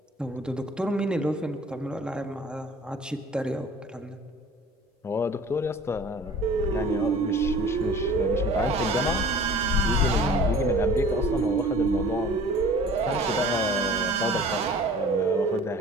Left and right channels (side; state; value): both; normal; correlation 0.46